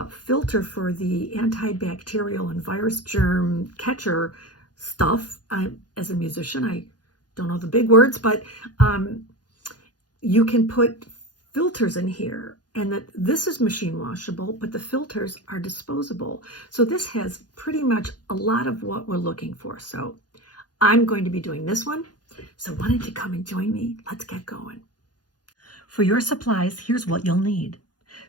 filter for the antibacterial and virus germ catcher stuff, as a musician, I don't know the big words, but you can put filters in here, and that this is machine washable, but the filters are disposable. So this has pretty much a lot of what we're looking for. So I'm going to be doing this one. So why don't you come and join me? Let's get going. For your supplies, here's what you'll need.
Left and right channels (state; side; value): late; right; 0.69 ms